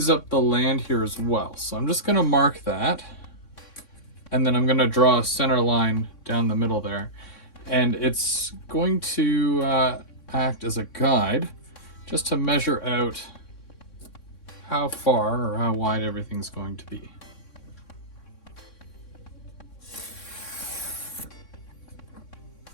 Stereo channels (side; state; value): right; late; 3.6 ms